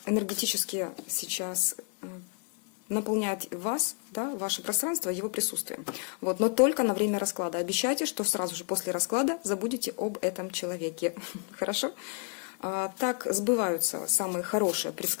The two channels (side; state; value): right; quieter; 38.7 dB